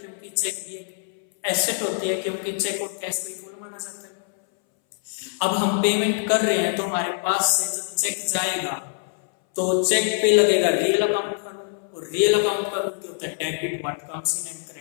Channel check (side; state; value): right; silent; 60 dB below the other